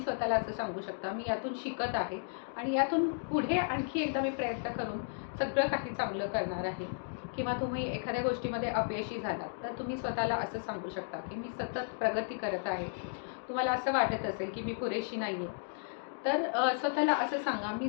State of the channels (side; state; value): right; silent; digital silence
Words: स्वतःला असं सांगू शकता, मी यातून शिकत आहे आणि यातून पुढे आणखी एकदा मी प्रयत्न करून सगळं काही चांगलं करणार आहे. किंवा तुम्ही एखाद्या गोष्टीमध्ये अपयशी झालात तर तुम्ही स्वतःला असं सांगू शकता की मी सतत प्रगती करत आहे. तुम्हाला असं वाटत असेल की मी पुरेशी नाही आहे, तर स्वतःला असं सांगा, मी